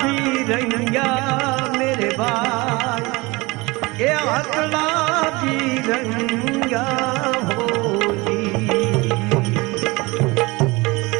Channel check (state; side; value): quieter; left; 23.7 dB